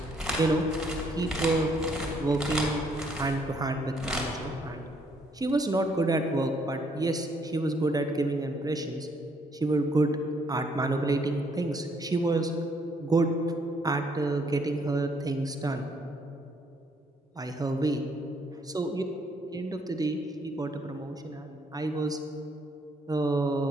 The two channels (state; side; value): normal; both; correlation 0.68